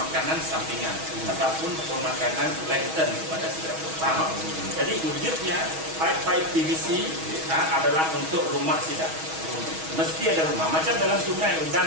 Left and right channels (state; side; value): late; left; 6.2 ms